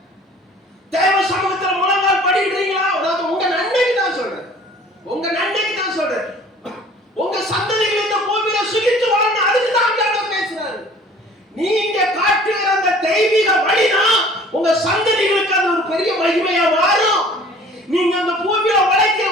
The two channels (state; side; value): normal; both; correlation 0.50